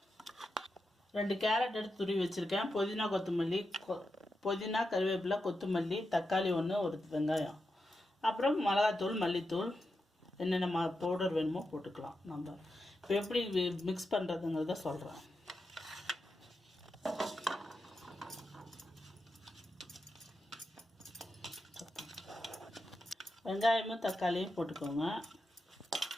2 கேரட் எடுத்து துருவி வச்சுருக்கேன். புதினா கொத்தமல்லி, புதினா கருவேப்பிலை, கொத்தமல்லி, தக்காளி 1, ஒரு வெங்காயம், அப்புறம் மிளகாத்தூள், மல்லித்தூள், என்னென்ன பவுடர் வேணுமோ போட்டுக்கலாம். நம்ம இப்போ எப்படி மிக்ஸ் பண்ணுறதுங்கிறத சொல்கிறேன். வெங்காயமும் தக்காளியும் போட்டுக்கோங்க.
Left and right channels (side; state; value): both; normal; correlation 0.88